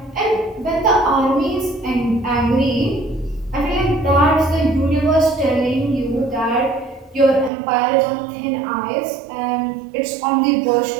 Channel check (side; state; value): left; drops out; at 7.5 s